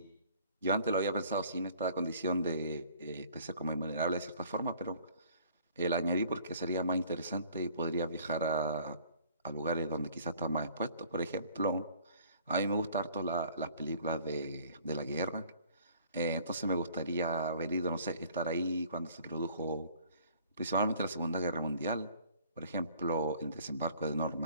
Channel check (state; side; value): inverted; both; correlation -0.54